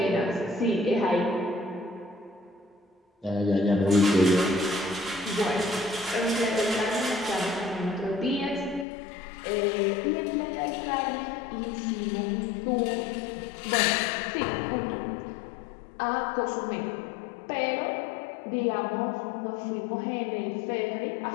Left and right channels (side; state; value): right; drops out; at 8.8 s